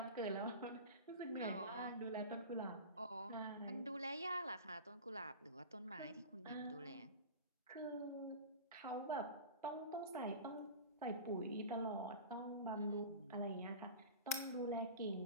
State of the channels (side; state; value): both; inverted; correlation -0.32